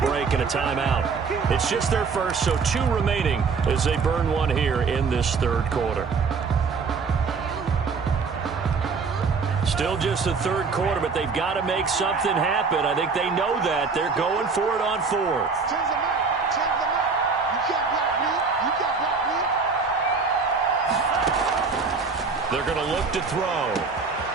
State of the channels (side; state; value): left; quieter; 4.9 dB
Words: break and a timeout. It's just their first, so 2 remaining as they burn one here in this third quarter. Still just the third quarter, but they've got to make something happen. I think they know that. They're going for it on 4th. They're going to look to throw.